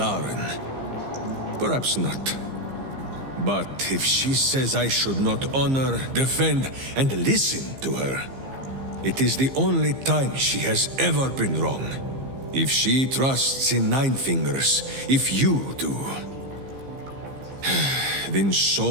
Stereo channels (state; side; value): late; left; 15 ms